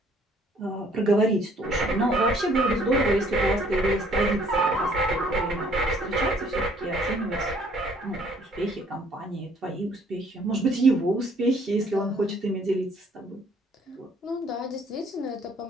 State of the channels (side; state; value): both; normal; correlation 0.61